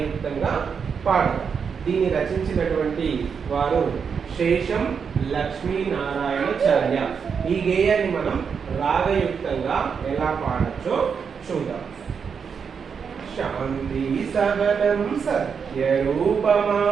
పాడదాం. దీన్ని రచించినటువంటి వారు శేషం లక్ష్మీనారాయణాచార్య. ఈ గేయాన్ని మనం రాగయుక్తంగా ఎలా పాడొచ్చో చూద్దాం. శాంతి సహనం సత్యరూపమా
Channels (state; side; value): quieter; left; 6.4 dB